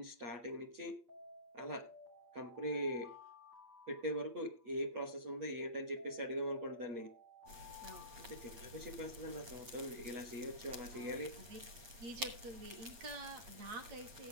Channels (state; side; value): late; left; 8.5 ms